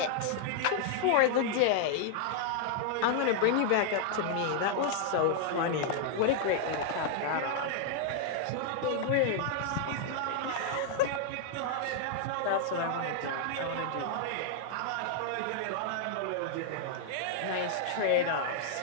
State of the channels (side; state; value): both; different; correlation -0.01